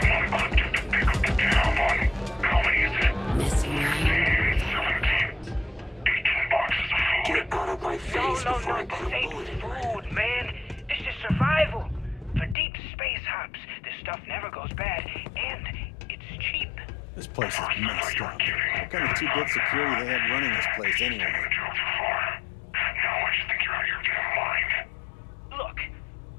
want equipped to pick up the tab on how many is it? Messing around. 17. 18 boxes of food. Get out of my face before I put a This bullet ain't in you. food, man. This is survival. For deep space hops, this stuff never goes bad, and it's cheap. This place is messed up. What kind of two-bit security they have running this place anyway? Now I just think you're out of your damn mind. Look,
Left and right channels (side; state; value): right; drops out; at 12.6 s